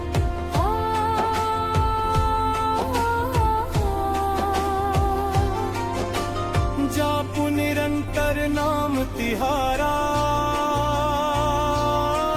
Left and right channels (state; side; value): identical; both; correlation 1.00